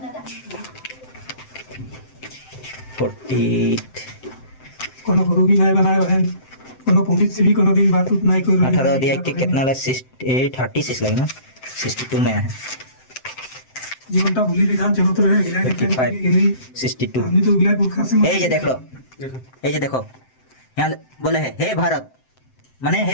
48 कोनो गुरु भी नहीं बनाए बहन कोनो पंडित से भी कोनो दिन बात उत नहीं कोई 18 अध्याय के कितना लगा 36 लगे ना 62 में है जीवन का भूली विधान चलो तो रहे गिला के 62 हमने तो गिला पुरखा से ये देख लो ये देखो यहाँ बोले है हे भारत माने हे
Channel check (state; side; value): late; right; 7.7 ms